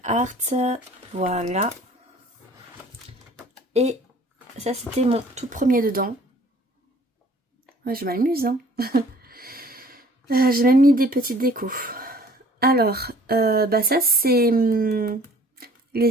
Art. Voilà. Et ça, c'était mon tout premier dedans. Ouais, je m'amuse, hein. J'ai même mis des petites décos. Alors, bah ça, c'est les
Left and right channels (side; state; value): both; normal; correlation 0.53